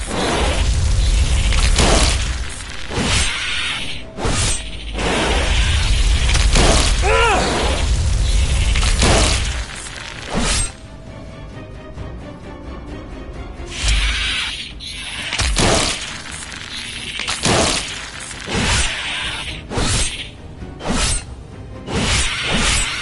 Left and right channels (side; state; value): both; identical; correlation 1.00